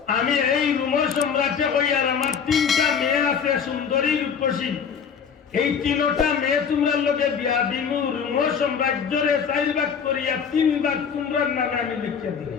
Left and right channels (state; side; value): quieter; right; 6.9 dB